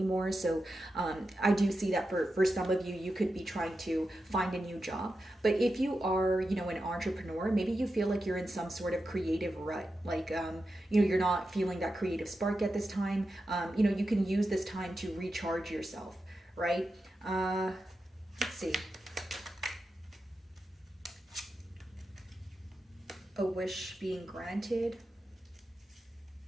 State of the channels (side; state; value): both; normal; correlation 0.90